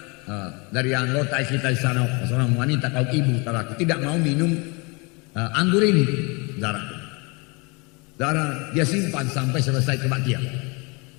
dari anggota kita di sana, seorang wanita kaum ibu, saudaraku tidak mau minum anggur ini, saudaraku. Saudara, dia simpan sampai selesai kebaktian.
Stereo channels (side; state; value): right; quieter; 29.4 dB